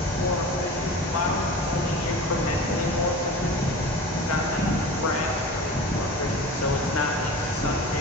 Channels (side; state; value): both; normal; correlation 0.35